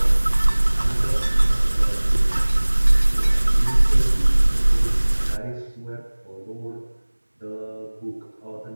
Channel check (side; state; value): both; inverted; correlation -1.00